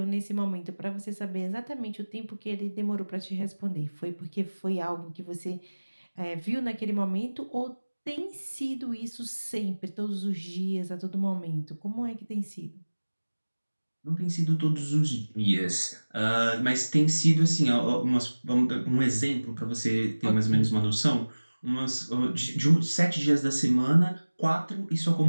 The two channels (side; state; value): both; inverted; correlation -1.00